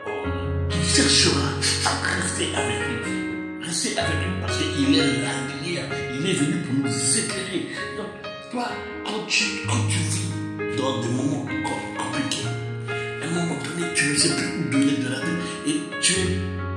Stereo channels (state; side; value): identical; both; correlation 1.00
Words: cherchera à rester avec lui. Rester avec lui parce qu'il est la lumière, il est venu pour nous éclairer. Donc, toi, quand tu vis dans des moments compliqués, à un moment donné, tu ne sais plus où donner de la tête et tu